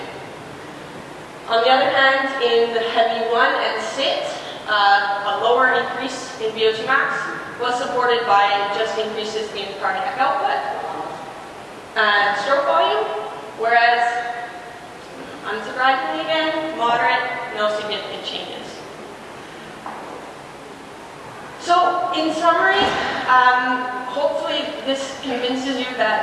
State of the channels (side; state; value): both; identical; correlation 1.00